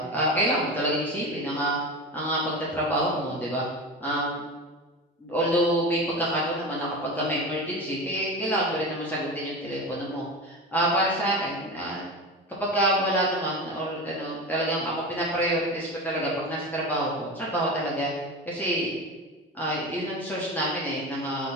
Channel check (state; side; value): normal; both; correlation 0.26